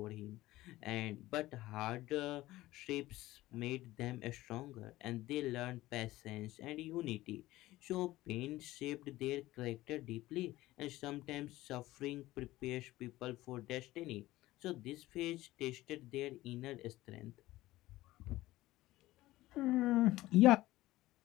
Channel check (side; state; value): right; quieter; 17.1 dB